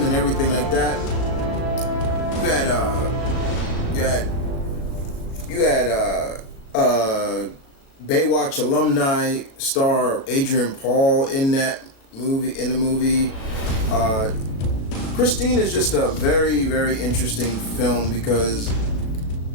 and everything like that. You had Baywatch alumni star Adrian Paul in the movie. Christine is just a very, very interesting film because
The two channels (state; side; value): late; right; 36 ms